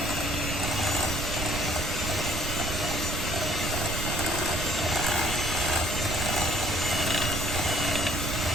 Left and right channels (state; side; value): noise; right; rumble, 3 dB below the sound